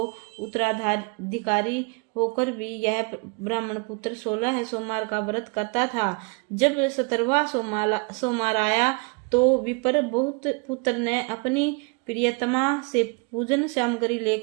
उत्तराधिकारी होकर भी यह ब्राह्मण पुत्र 16 सोमवार का व्रत करता था। जब 17वां सोमवार आया तो विप्र बहुत पुत्र ने अपनी प्रियतमा से पूजन सामग्री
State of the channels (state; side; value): quieter; left; 31.3 dB